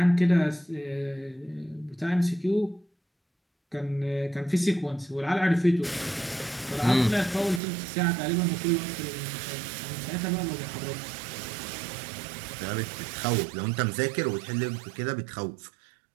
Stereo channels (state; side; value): drops out; left; at 7.6 s